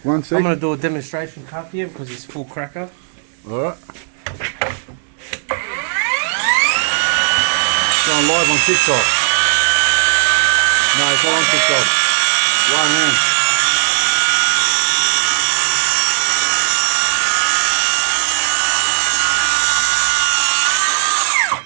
I'm gonna do a demonstration cut here because it's full cracker. Alright. Going live on TikTok. No, it's not on TikTok. One hand.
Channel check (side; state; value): left; silent; 69 dB below the other